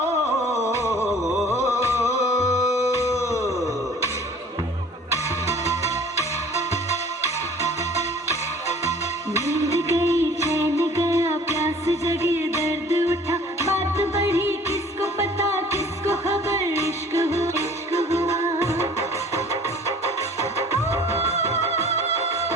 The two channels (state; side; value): normal; both; correlation 0.50